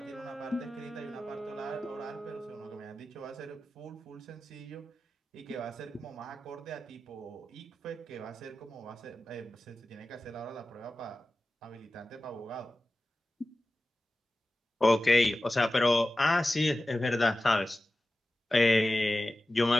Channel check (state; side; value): normal; both; correlation 0.94